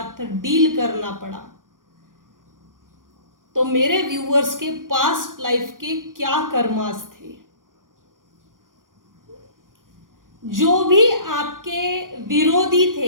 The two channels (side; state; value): left; late; 0.90 ms